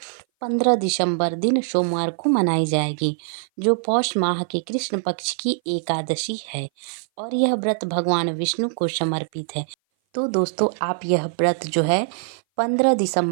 15 दिसंबर दिन सोमवार को मनाई जाएगी, जो पौष माह के कृष्ण पक्ष की एकादशी है और यह व्रत भगवान विष्णु को समर्पित है। तो दोस्तों, आप यह व्रत जो है 15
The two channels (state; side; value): silent; left; 58 dB below the other